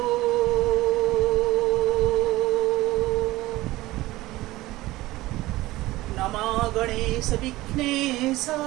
नमो गणेश विघ्नेश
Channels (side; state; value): left; quieter; 18.1 dB